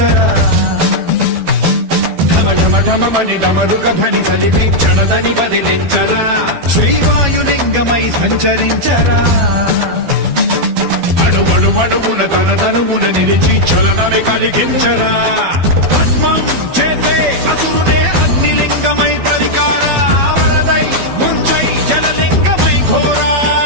ఢమ ఢమని డమరుక ధ్వని సలిపి చడదని వదిలించరా శ్రీవాయులింగమై సంచరించరా అణువణువున తన తనువున నిలిచి చలనమే కలిగించరా భస్మం చేసే అసురునే అగ్నిలింగమై ప్రలికారా వరదై ముంచై జలలింగమై ఘోరా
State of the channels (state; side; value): late; left; 12 ms